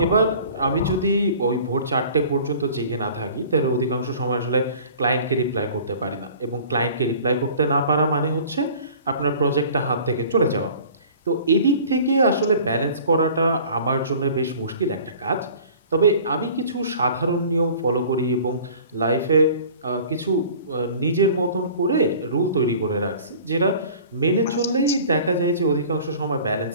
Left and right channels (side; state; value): both; inverted; correlation -0.46